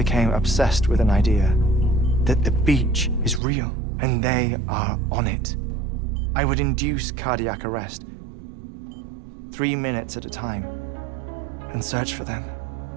obsessed with an idea that the beach is real and they are on it. I would induce cardiac arrest, 3 minutes at a time, and search for them,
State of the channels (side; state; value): left; drops out; at 3.4 s